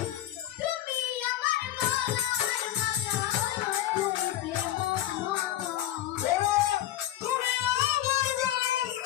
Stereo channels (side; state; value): right; quieter; 12.8 dB